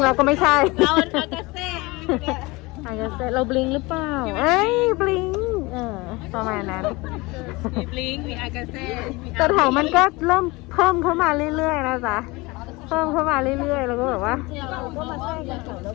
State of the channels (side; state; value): right; quieter; 23.5 dB